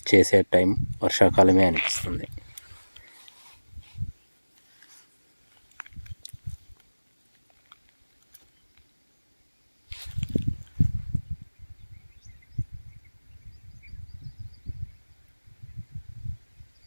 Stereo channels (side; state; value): both; inverted; correlation -1.00